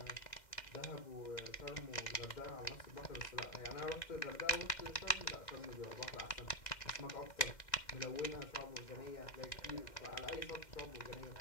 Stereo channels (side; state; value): right; late; 1.9 ms